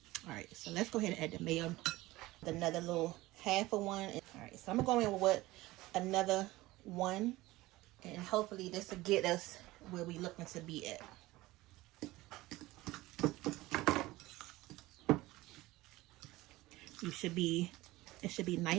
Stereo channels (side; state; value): left; quieter; 18.8 dB